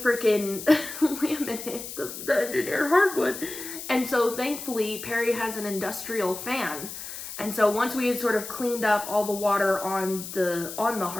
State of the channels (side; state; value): left; noise; hiss, 10 dB below the sound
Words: laminate, the engineered hardwood. And so thankfully Perry has an industrial fan. And so once we had sort of cleaned up all the water on the